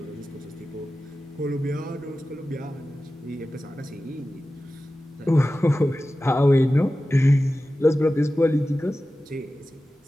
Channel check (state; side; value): normal; both; correlation 0.95